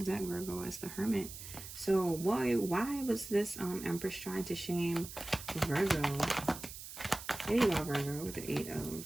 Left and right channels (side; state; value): right; noise; hiss, 11 dB below the sound